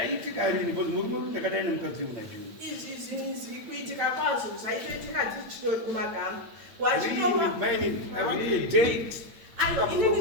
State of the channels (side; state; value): left; late; 8.8 ms